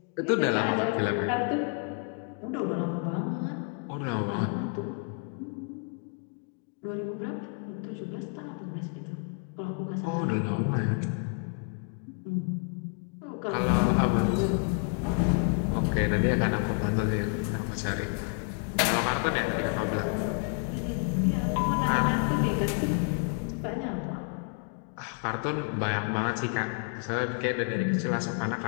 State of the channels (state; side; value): quieter; right; 39.9 dB